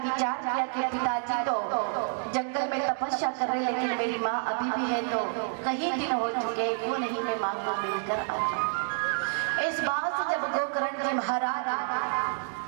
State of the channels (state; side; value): silent; left; digital silence